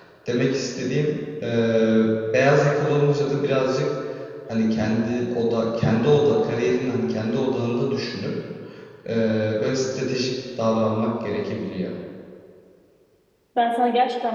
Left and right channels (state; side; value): identical; both; correlation 1.00